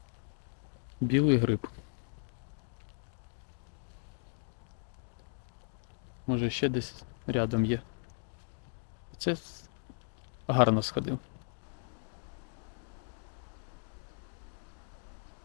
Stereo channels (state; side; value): silent; right; 53 dB below the other